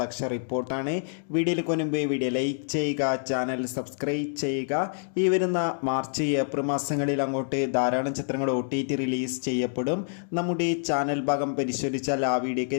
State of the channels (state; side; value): silent; right; digital silence